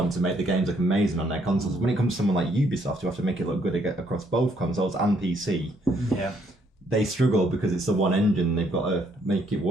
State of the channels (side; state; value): both; normal; correlation 0.69